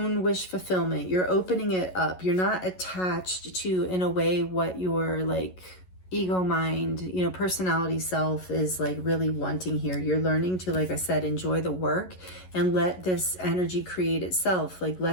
wish fulfillment. You're opening it up. You're not attached to, in a way, what your like ego mind, personality self is like really wanting here. You're learning to, like I said, enjoy the work and let this energy create itself. Like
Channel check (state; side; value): late; right; 11 ms